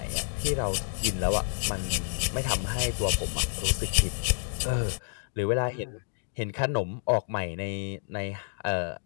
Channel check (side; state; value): right; silent; 59 dB below the other